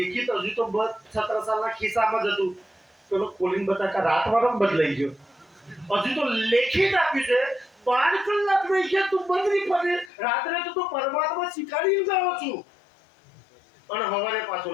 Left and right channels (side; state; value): right; drops out; at 10.1 s